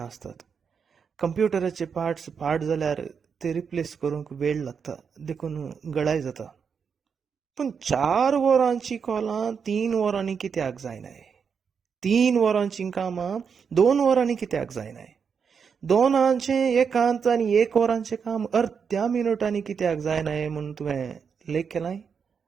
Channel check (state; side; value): quieter; left; 6.4 dB